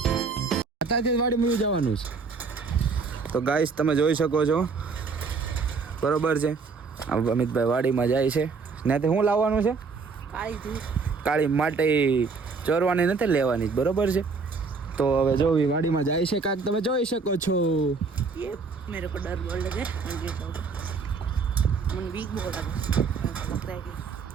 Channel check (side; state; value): left; quieter; 4.7 dB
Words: અત્યારથી વાડીમાં જવાનું છે. તો ગાઈસ તમે જોઈ શકો છો, બરોબર છે. અમિતભાઈ વાડીમાં જાય છે. ત્યાંથી શું લાવવાનું છે? કાળી માટી ચોરવાની નથી, લેવાની, બરોબર છે. તો હવે જો વાડીમાં જાય છે કાંઈક તમે જોઈ શકો છો. ये मेरे को डर बोल लगे मन वीक बोल लगा लग रहा है कि